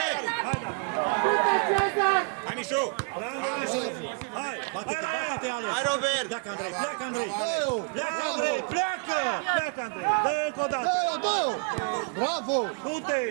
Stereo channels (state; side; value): quieter; left; 36.4 dB